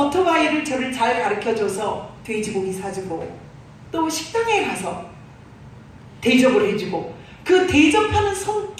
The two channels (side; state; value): both; identical; correlation 1.00